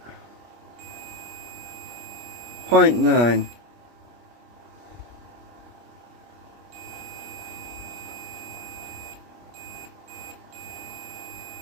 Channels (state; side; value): late; left; 25 ms